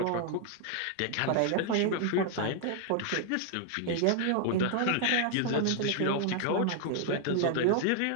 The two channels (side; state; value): both; different; correlation 0.00